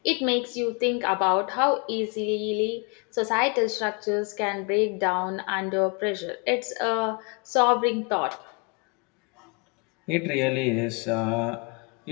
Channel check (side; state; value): right; quieter; 33.0 dB